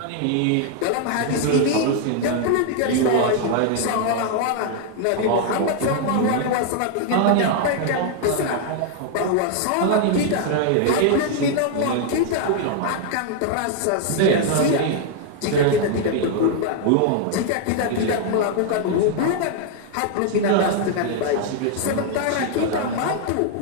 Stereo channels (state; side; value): different; both; correlation 0.00